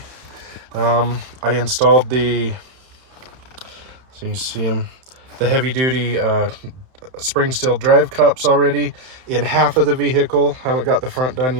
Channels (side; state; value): left; late; 31 ms